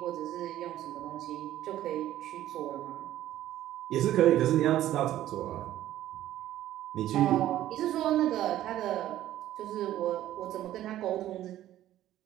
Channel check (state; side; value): quieter; left; 13.3 dB